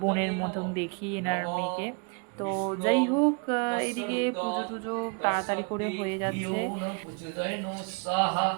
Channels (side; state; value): left; quieter; 34.9 dB